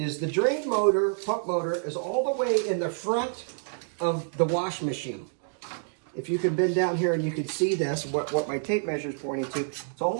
the drain motor, pump motor, is all the way in the front of the wash machine. If you can bend down here and you can see this, what my tape measure is pointing to, it's all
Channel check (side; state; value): left; silent; digital silence